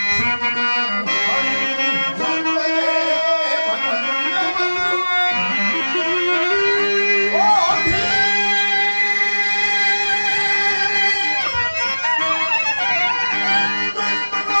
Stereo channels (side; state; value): both; inverted; correlation -1.00